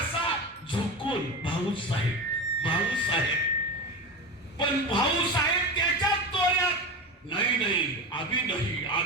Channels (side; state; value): both; normal; correlation 0.23